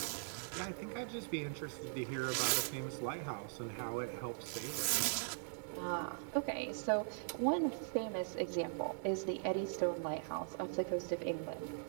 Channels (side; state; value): left; silent; 51 dB below the other